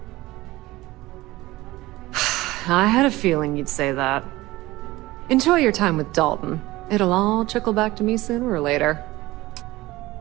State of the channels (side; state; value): left; quieter; 18.7 dB